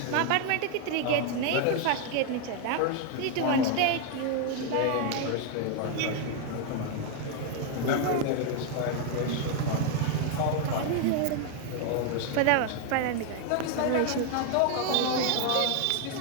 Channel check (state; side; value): different; both; correlation 0.00